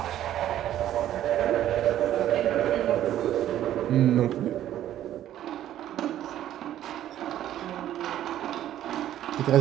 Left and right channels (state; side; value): quieter; left; 12.1 dB